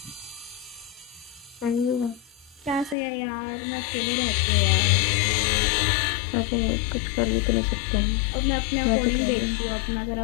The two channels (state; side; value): drops out; right; at 3.0 s